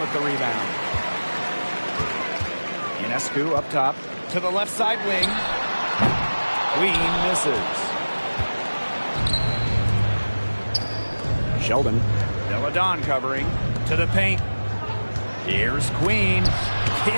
with the rebound. Ionescu up top to the left side wing. Queen misses. Sheldon. Deladon covering to the paint. Here's Queen.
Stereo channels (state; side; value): inverted; both; correlation -1.00